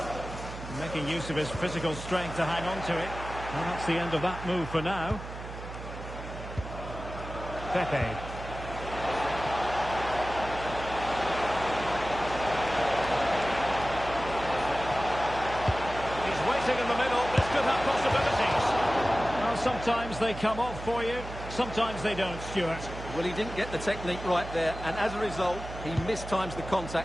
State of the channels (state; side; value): noise; right; hum, 10 dB below the sound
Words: Making use of his physical strength to hang on to it. Well, that's the end of that move for now. Pepe. In the middle, this could have possibilities. Well, sometimes they come off for you, sometimes they don't, Stuart. Well, he didn't get the technique right there, and as a result, he mistimes the